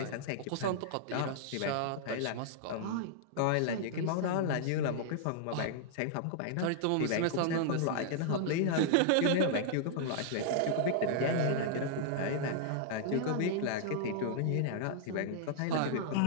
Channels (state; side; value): different; both; correlation -0.01